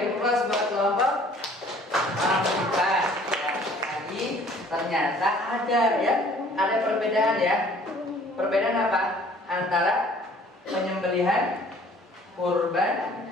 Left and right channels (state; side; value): normal; both; correlation 0.54